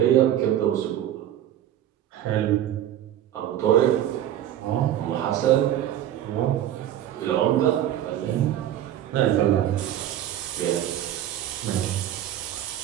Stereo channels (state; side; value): quieter; left; 11.7 dB